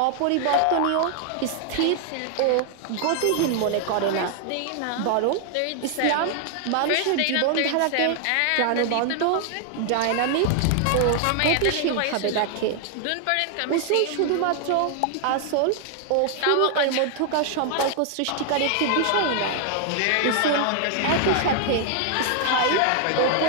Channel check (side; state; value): both; different; correlation 0.00